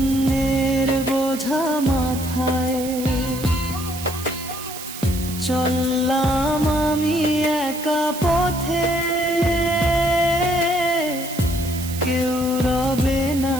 বোঝা মাথায় চললাম আমি একা পথে, কেউ রবে না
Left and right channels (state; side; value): noise; right; hiss, 11 dB below the sound